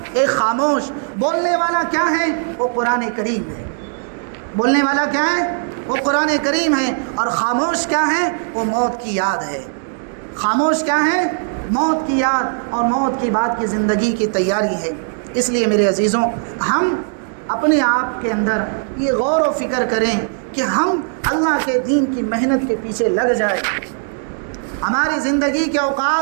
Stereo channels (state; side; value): silent; left; 67 dB below the other